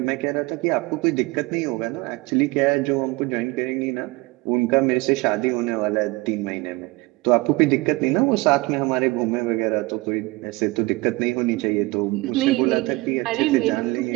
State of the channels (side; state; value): left; quieter; 22.8 dB